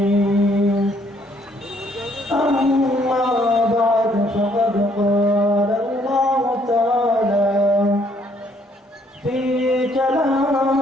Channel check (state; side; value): normal; both; correlation 0.66